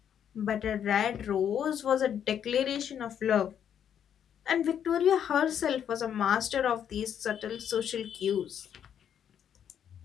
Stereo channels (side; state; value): right; quieter; 9.0 dB